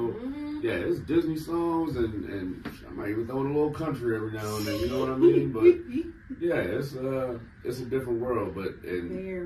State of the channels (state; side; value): identical; both; correlation 1.00